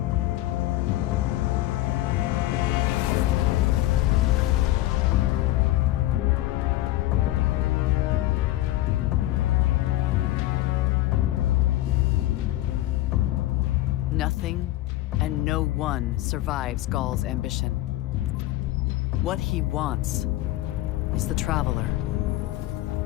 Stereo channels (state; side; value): quieter; right; 16.0 dB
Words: Nothing and no one survives Gaul's ambition. What he wants is the Traveler